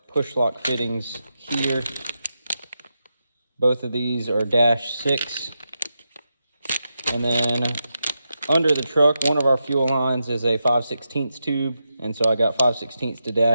push lock fittings here. Both of these are -6, and then under the truck, one of our fuel lines is a 5/16 tube, and so I got 5/16 to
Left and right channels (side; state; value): both; inverted; correlation -0.87